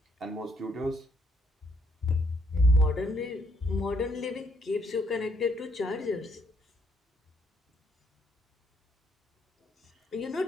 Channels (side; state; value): both; normal; correlation 0.71